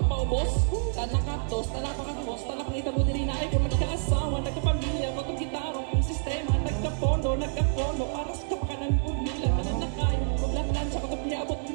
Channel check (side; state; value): left; silent; digital silence